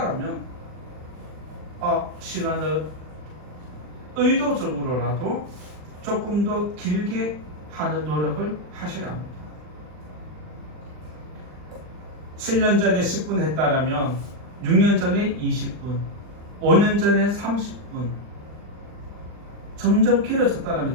시간을 의도적으로라도 조금 더 길게 하는 노력을 하셔야 합니다. 7년 전에 10분 했다라면 6년 전에 20분, 5년 전에 30분 점점 길어졌다면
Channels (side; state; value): left; late; 39 ms